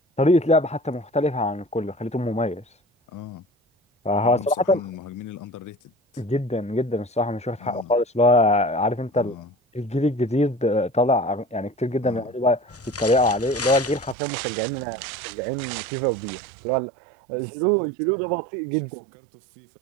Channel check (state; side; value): drops out; left; at 14.2 s